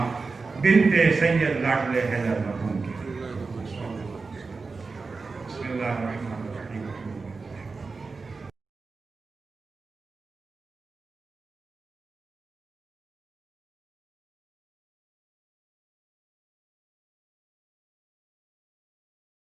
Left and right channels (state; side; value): quieter; left; 4.3 dB